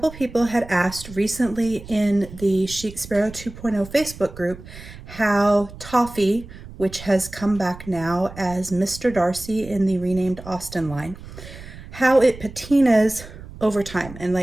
people had asked recently in the Chic Sparrow 2.0 Facebook group how Toffee, which has come back now as Mr. Darcy in the renamed Austin line, how it patinas over time and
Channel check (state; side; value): noise; right; rumble, 15 dB below the sound